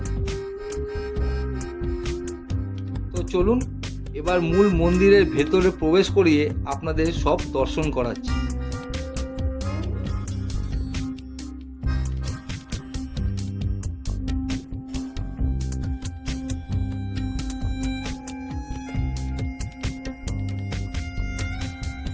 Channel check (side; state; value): both; identical; correlation 1.00